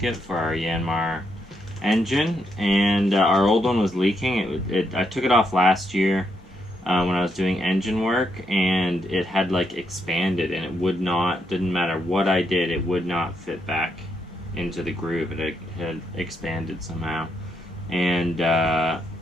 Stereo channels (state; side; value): normal; both; correlation 0.79